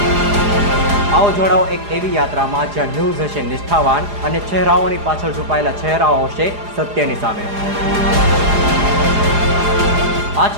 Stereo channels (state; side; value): late; left; 4.8 ms